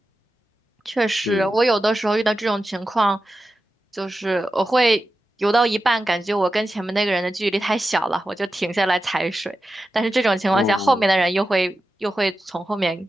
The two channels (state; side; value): normal; both; correlation 0.91